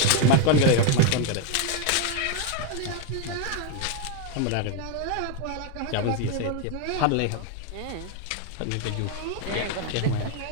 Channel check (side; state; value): both; different; correlation 0.01